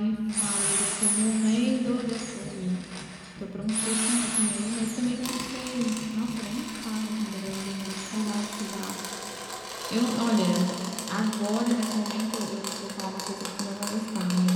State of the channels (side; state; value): both; identical; correlation 1.00